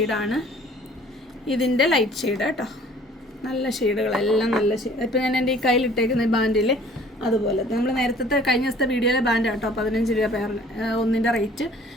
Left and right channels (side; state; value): both; normal; correlation 0.52